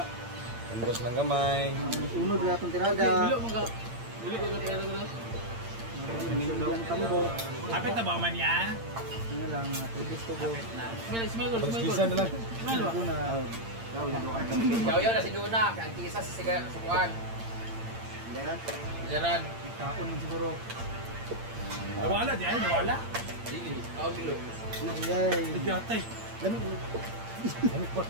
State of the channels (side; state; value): left; late; 8.8 ms